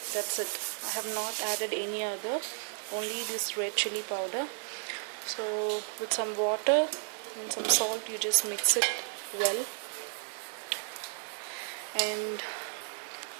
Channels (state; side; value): silent; left; 56 dB below the other